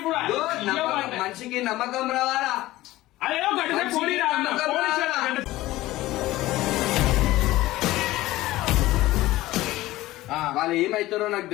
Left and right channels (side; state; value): right; quieter; 17.1 dB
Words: మనిషికి నమ్మకం రావాలా? వాళ్ళు ఏమైతారో నాకు